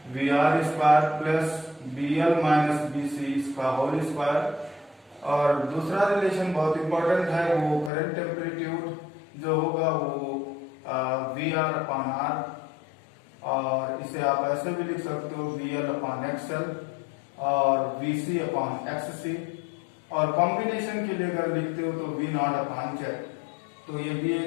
V R square plus B L minus B C इसका होल स्क्वायर। और दूसरा रिलेशन बहुत इंपॉर्टेंट है, वो करंट एम्पलीट्यूड जो होगा वो वी आर अपॉन आर और इसे आप ऐसे भी लिख सकते हो वी एल अपॉन एक्सएल और वी सी अपॉन एक्स सी और कॉम्बिनेशन के लिए अगर लिखते हो तो वी नॉट अपॉन जेड। तो ये भी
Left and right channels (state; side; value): drops out; right; at 7.9 s